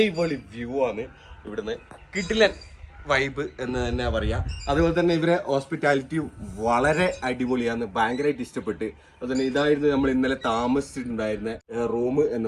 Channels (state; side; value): identical; both; correlation 1.00